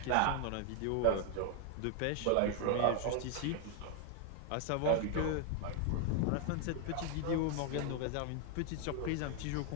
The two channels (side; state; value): both; different; correlation 0.00